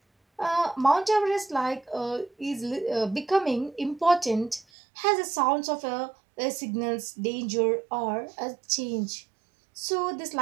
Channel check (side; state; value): left; drops out; at 4.7 s